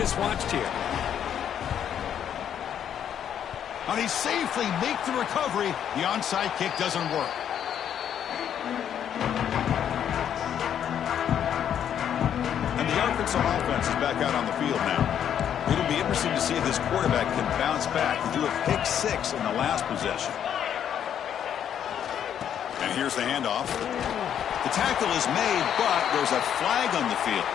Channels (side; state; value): right; quieter; 9.3 dB